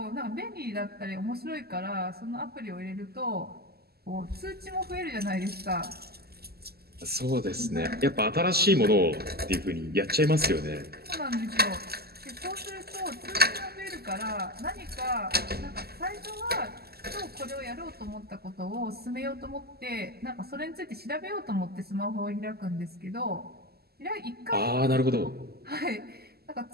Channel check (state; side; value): late; left; 0.46 ms